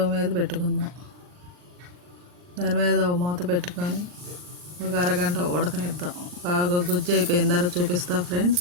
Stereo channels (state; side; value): late; left; 39 ms